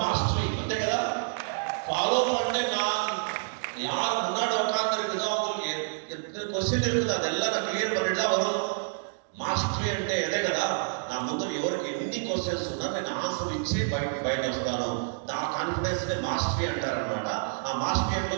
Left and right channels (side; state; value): left; silent; digital silence